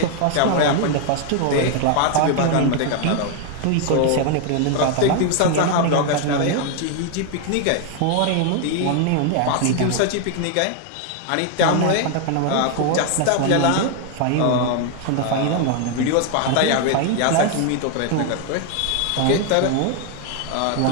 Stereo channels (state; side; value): different; both; correlation 0.00